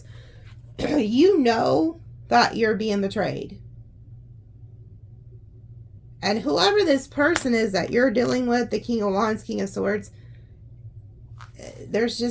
You know that you're being betrayed. And whoever this person is that you're dealing with, the King of Wands, King of Swords, there's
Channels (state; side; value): identical; both; correlation 1.00